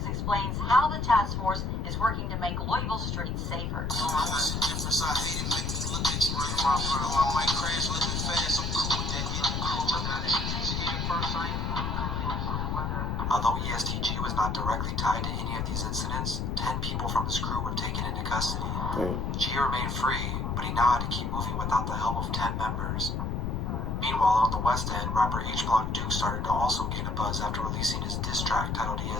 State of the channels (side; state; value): left; noise; rumble, 1 dB below the sound